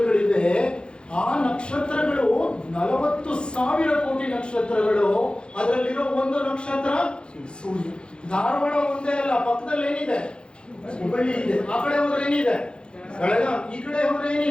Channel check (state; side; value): late; right; 0.054 ms